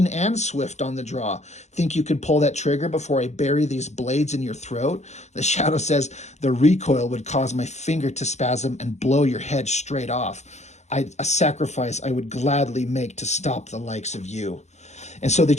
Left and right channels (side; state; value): right; late; 0.33 ms